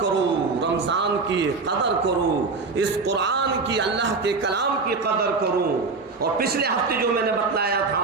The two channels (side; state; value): left; quieter; 4.2 dB